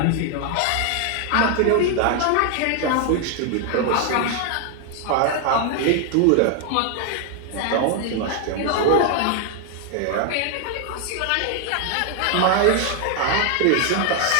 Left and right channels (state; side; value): different; both; correlation 0.00